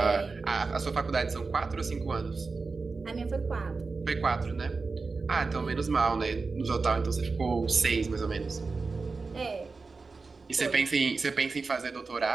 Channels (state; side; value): quieter; left; 4.2 dB